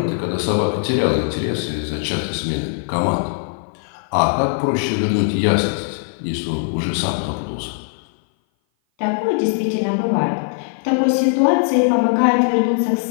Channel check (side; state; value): right; silent; 57 dB below the other